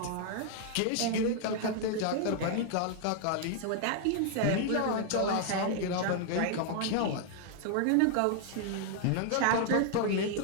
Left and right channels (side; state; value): both; different; correlation 0.00